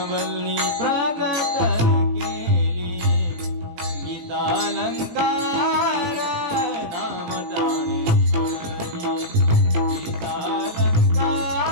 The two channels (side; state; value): left; late; 18 ms